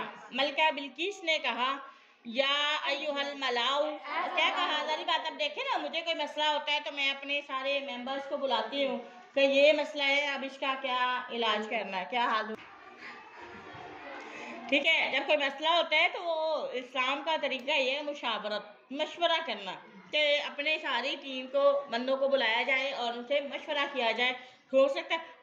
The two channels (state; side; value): identical; both; correlation 1.00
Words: मलका बिल्किस ने कहा या अय्युहल मलाउ। क्या कहा? सारी बात अब देखे ना, मुझे कोई मसला होता है तो मैं अपने सारे मेंबर्स को बुलाती हूँ कि ये मसला है, अब इसका क्या इलाज करना है, क्या हाल। ठीक है, जब कोई मसला होता है तो वो इस्लाम का तरीका ये है मुशावरत, मशवरा करना, कि अपने सारी टीम को, बंदों को बुलाया जाए और उनसे मशवरा किया जाए। हो सकता है,